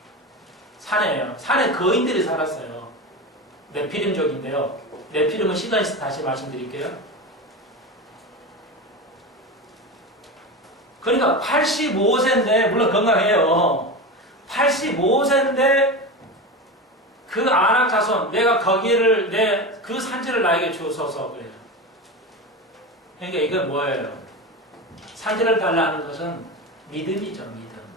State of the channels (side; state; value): both; normal; correlation 0.23